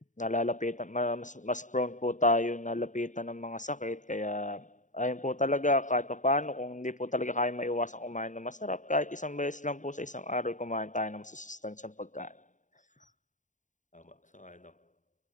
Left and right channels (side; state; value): right; late; 0.36 ms